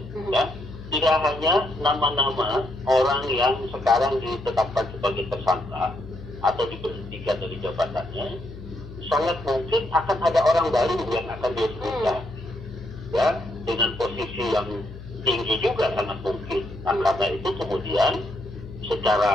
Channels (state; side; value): noise; left; hum, 14 dB below the sound